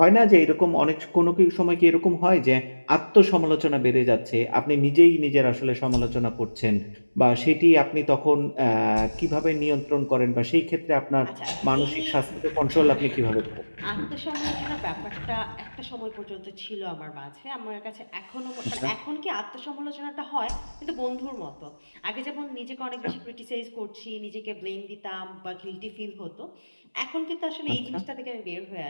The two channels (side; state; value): both; inverted; correlation -1.00